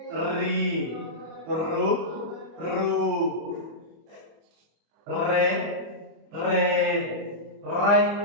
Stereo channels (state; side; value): late; left; 25 ms